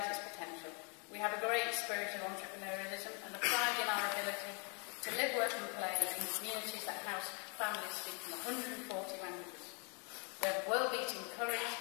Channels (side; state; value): right; quieter; 35.3 dB